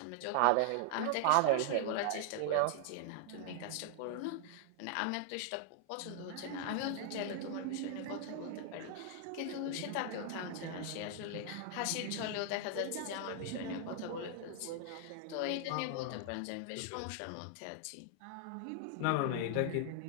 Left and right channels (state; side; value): different; both; correlation 0.00